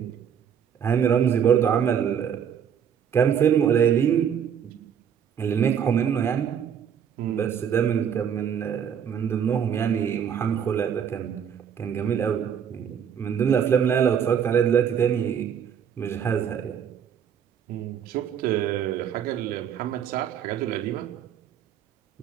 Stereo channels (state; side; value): quieter; left; 8.2 dB